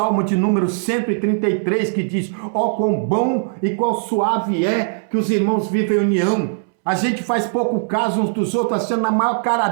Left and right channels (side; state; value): left; silent; 66 dB below the other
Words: de número 133, que diz, ó, quão bom e quão suave é que os irmãos vivem em união. A gente faz pouco caso uns dos outros, sendo na maior cara